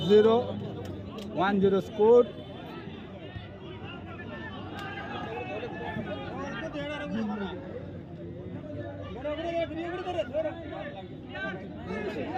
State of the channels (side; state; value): both; identical; correlation 1.00